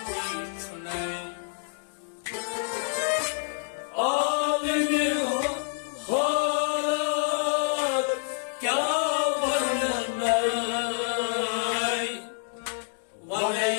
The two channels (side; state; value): right; silent; digital silence